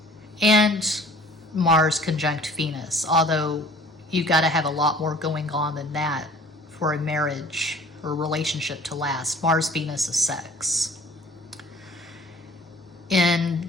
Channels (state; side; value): normal; both; correlation 0.50